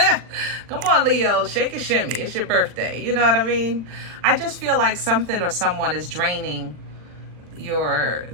Come on, Leo, shake a shimmy. It's your birthday. You know what I mean? I just feel like something or someone is draining your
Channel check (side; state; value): left; late; 40 ms